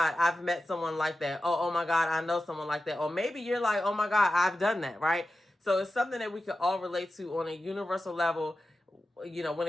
I've met someone like that. Oh my God, I know someone like that. Or maybe you're like, oh my God, I've done that, right? So it's something that we can all relate to on a universal level, when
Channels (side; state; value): both; normal; correlation 0.93